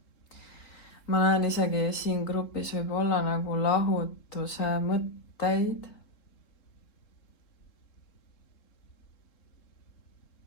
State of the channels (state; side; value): late; right; 3.7 ms